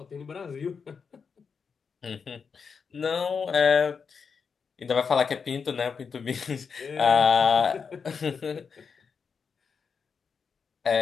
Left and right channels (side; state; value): right; quieter; 5.9 dB